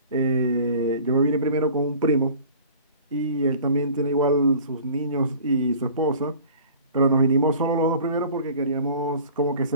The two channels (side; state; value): both; inverted; correlation -0.46